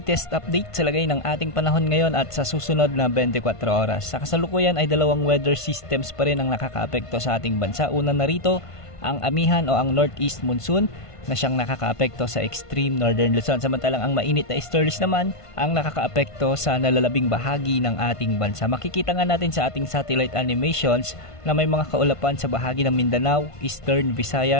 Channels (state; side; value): late; right; 1.5 ms